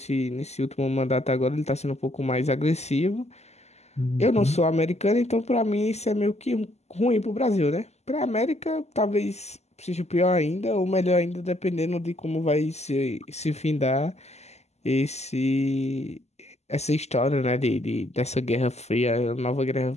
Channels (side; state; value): right; late; 0.32 ms